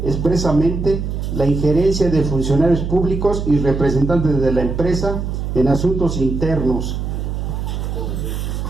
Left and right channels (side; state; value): right; noise; hum, 3 dB below the sound